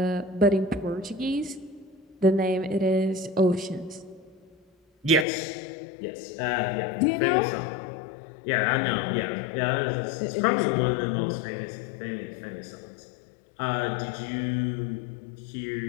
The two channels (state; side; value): drops out; right; at 5.2 s